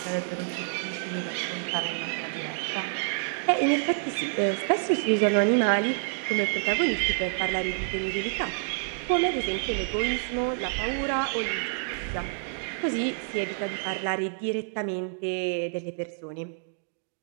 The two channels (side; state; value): left; silent; 59 dB below the other